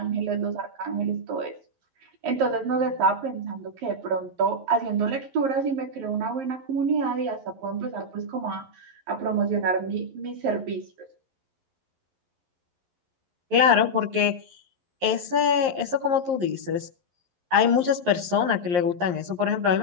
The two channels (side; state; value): left; late; 11 ms